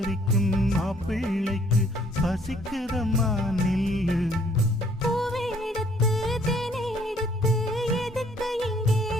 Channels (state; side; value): normal; both; correlation 0.63